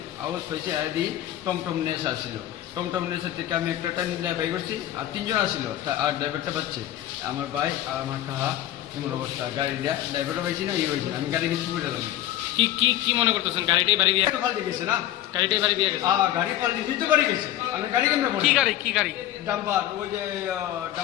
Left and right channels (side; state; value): right; quieter; 13.3 dB